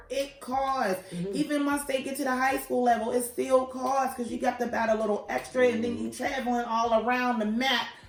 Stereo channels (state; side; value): identical; both; correlation 1.00